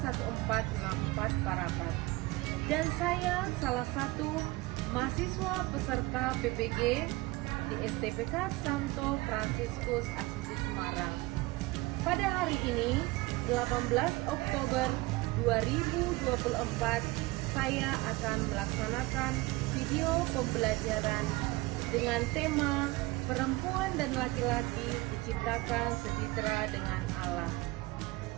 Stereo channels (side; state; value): left; quieter; 21.3 dB